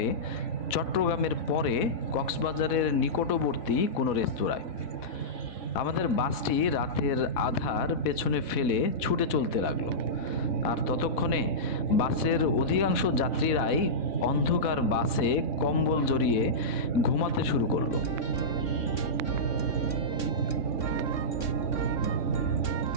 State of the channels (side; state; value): right; late; 4.1 ms